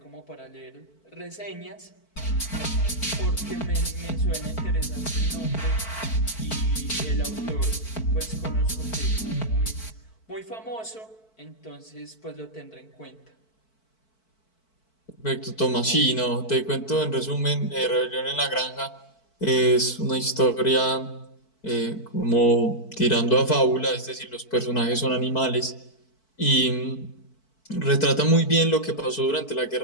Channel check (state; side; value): late; right; 4.5 ms